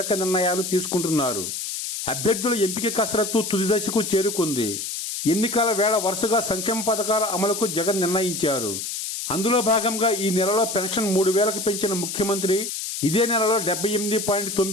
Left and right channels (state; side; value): noise; left; hiss, 5 dB below the sound